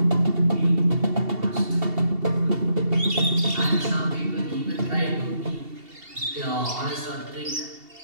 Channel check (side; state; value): left; late; 2.7 ms